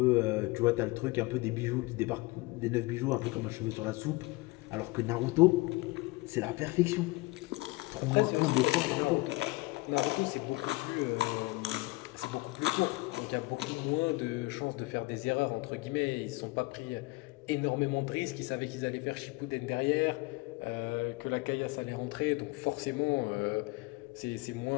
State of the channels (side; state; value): right; quieter; 23.1 dB